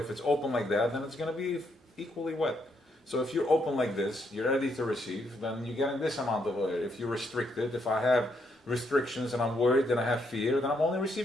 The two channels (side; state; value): both; normal; correlation 0.76